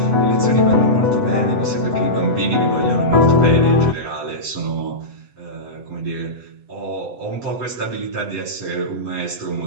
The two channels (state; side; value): late; left; 8.0 ms